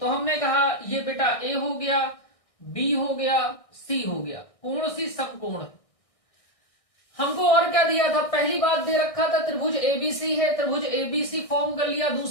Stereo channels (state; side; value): late; right; 1.6 ms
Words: हमने कहा ये बेटा ए हो गया, बी हो गया, सी हो गया। कोण सी समकोण है। हमको और क्या दिया था? पहली बात दे रखा था त्रिभुज एबीसी है, त्रिभुज एबीसी फॉर्म कर लिया।